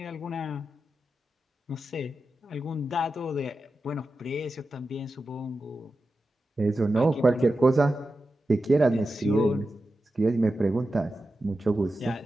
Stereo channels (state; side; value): normal; both; correlation 0.91